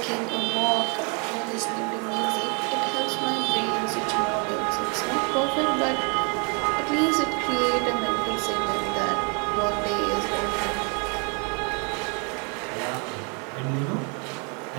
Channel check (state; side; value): quieter; left; 35.4 dB